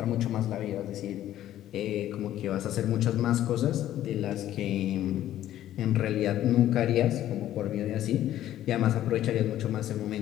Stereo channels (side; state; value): right; quieter; 12.7 dB